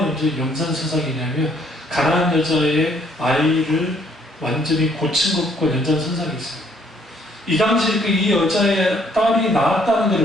연장선상이냐면 가난한 여자의 아이를 완전히 고친 것과 연장선상이 있어요. 이 당시에 이 여자의 딸이 낳았다는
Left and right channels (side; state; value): both; normal; correlation 0.65